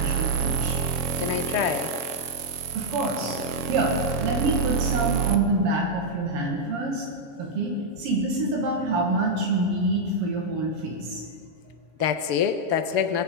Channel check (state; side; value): late; left; 7.2 ms